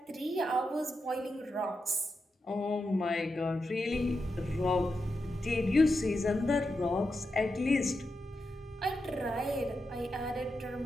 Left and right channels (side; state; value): both; normal; correlation 0.87